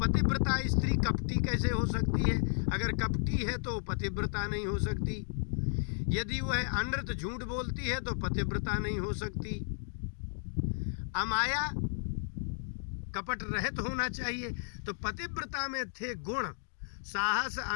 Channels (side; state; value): right; silent; digital silence